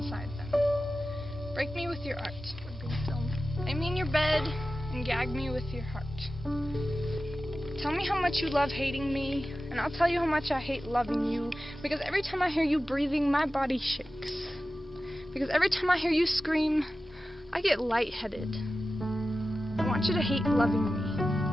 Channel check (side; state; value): both; normal; correlation 0.94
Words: them. Break me with your art. Lay me in your bed and gag me with your heart. Tell me how much you love hating me, and I'll tell you how much I hate loving you, because every time I hear you breathing, my body shakes. Because every time I hear you scream, I get lightheaded. I want you to hate loving